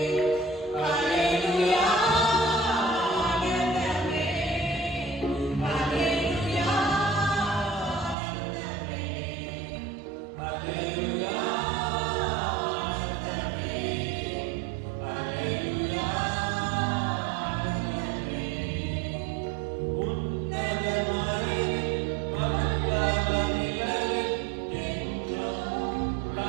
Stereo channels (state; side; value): drops out; left; at 8.2 s